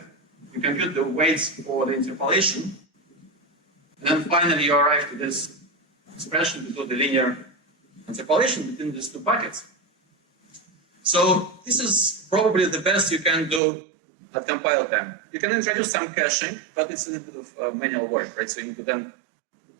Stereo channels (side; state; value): left; drops out; at 13.6 s